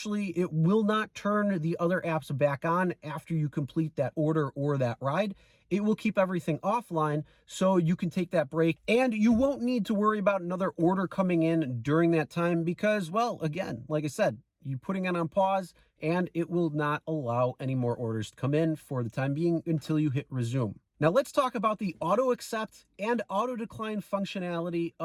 it will not turn the other apps back on after you complete that order or that ride. It will keep everything offline so you can take that break, and you won't need to worry about another order coming in during that time because, well, again, like I said, you're putting it on pause and it will not allow any more orders to come in for the time being until you hit resume. Now let's talk about the auto accept and auto decline functionality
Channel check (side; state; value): both; identical; correlation 1.00